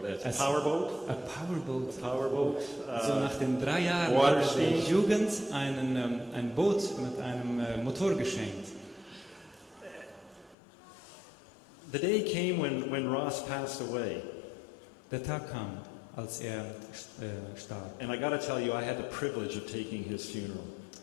a powerboat. A powerboat. A powerboat. So nach den 3 Jahren Water hat die skiing. Jugend ein Boot mit einem Motor geschenkt. The day came when Ross passed away. Der Tag kam, als er starb. And I got to tell you, I had the privilege of taking his funeral.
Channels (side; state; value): right; drops out; at 10.6 s